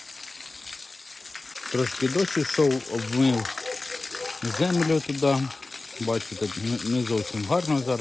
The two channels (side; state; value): right; quieter; 3.3 dB